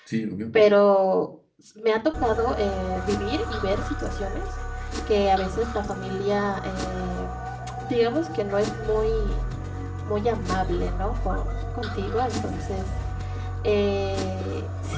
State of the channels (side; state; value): both; identical; correlation 1.00